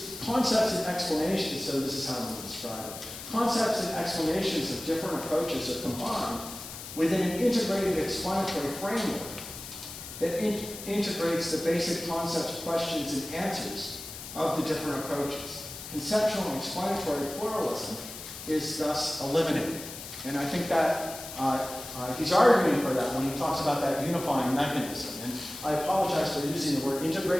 concepts and explanations, so this is how I'm going to describe it. Concepts and explanations of different approaches are combined within an integrated explanatory framework that integrates the basic concepts, questions, and answers of the different approaches. Conceptual and explanatory pluralism is thus eliminated. And I think that he's arguing for that when he talks about that unifying mechanism. And I apologize for using the word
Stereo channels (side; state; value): left; noise; hiss, 11 dB below the sound